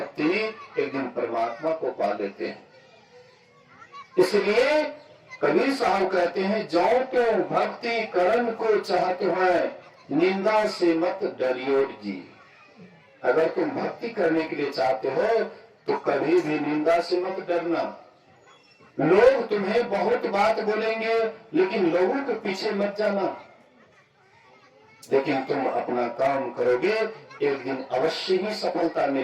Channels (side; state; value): both; identical; correlation 1.00